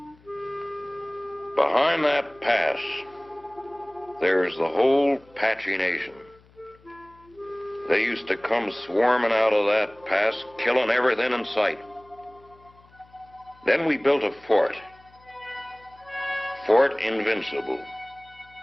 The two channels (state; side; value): noise; left; hum, 28 dB below the sound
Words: Behind that pass, there's the whole Apache Nation. They used to come swarming out of that pass, killing everything in sight. Then we built a fort. Fort Invincible.